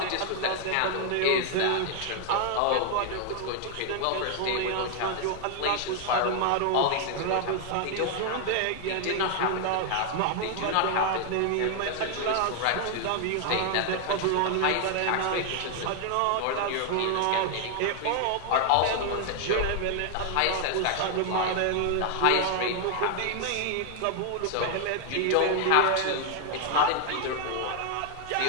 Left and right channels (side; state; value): both; different; correlation 0.00